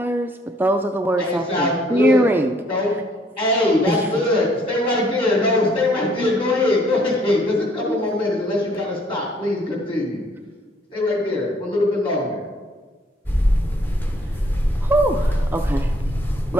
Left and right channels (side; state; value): both; normal; correlation 0.63